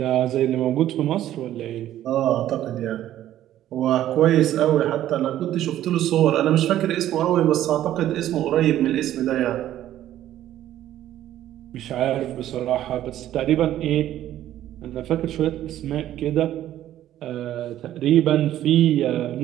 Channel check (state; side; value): quieter; left; 12.6 dB